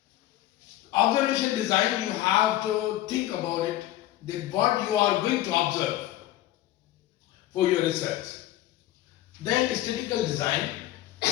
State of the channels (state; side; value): quieter; right; 14.4 dB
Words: observation design, you have to think about it, that what you are going to observe for your research. Then statistical design,